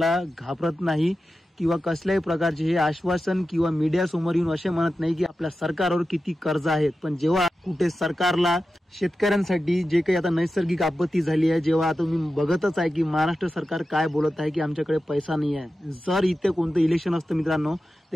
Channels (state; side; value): normal; both; correlation 0.92